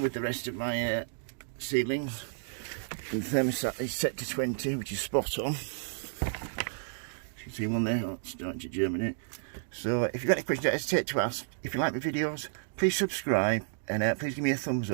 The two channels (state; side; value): silent; left; digital silence